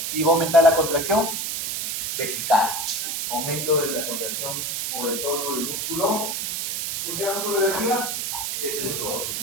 y va a aumentar la contracción vesical. Aumento de la contracción o del tono del músculo. ¿Por qué músculo de la vejiga?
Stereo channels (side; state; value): right; noise; hiss, 2 dB below the sound